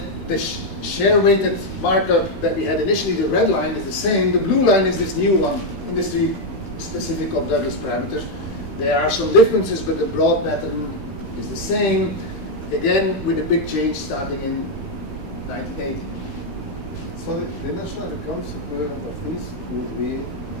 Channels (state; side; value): late; right; 15 ms